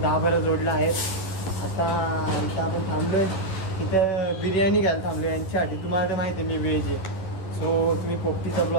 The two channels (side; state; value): right; late; 11 ms